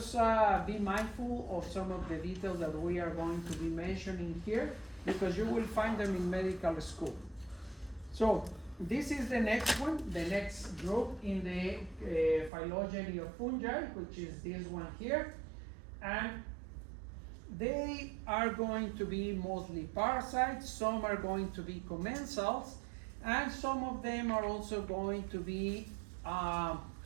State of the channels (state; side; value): drops out; left; at 12.5 s